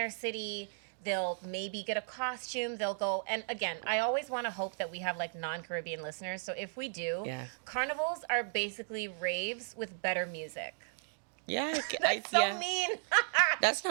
city, they'll maybe get a costume. They'll go. And again, I always want to hope that we have non-Caribbean listeners. So if we do, carnivals are basically raves with better music. Yeah. That's so mean. That's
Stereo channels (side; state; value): left; silent; digital silence